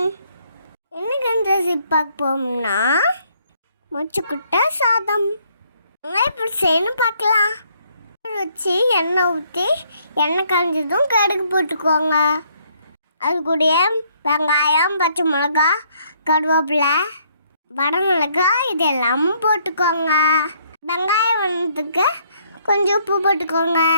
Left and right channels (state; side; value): inverted; both; correlation -0.68